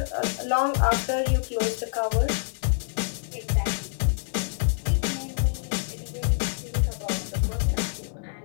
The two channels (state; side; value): silent; right; digital silence